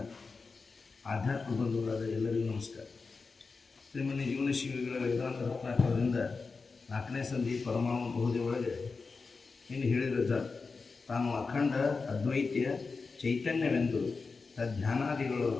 ಆಧ್ಯಾತ್ಮ ಬಂಧುಗಳಾದ ಎಲ್ಲರಿಗೂ ನಮಸ್ಕಾರ. ಶ್ರೀಮನ್ಯ ಜೀವನ ಶಿವಿಗಳ ವೇದಾಂತ ರತ್ನಾಕರದಿಂದ 4ನೇ ಸಂಧಿ ಪರಮಾಣು ಬಹುದೇ ಒಳಗೆ ಇನ್ನು ಹೇಳಿದ ತಾನು ಅಖಂಡ ಅದ್ವೈತ್ಯ ಚೈತನ್ಯವೆಂದು ಧ್ಯಾನಾದಿಗಳು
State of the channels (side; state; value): right; quieter; 4.4 dB